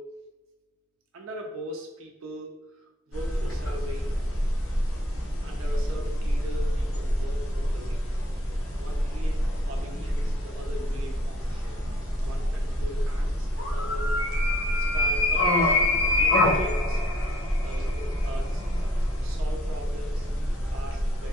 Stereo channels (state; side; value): normal; both; correlation 0.61